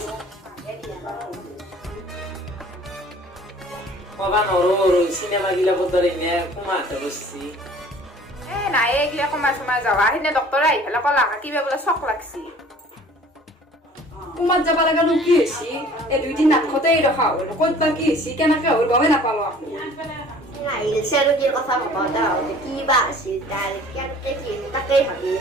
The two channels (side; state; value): both; normal; correlation 0.50